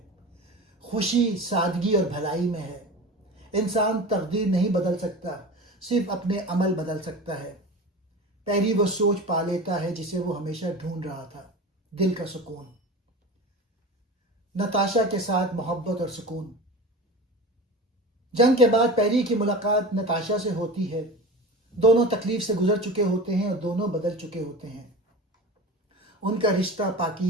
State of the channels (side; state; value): both; normal; correlation 0.32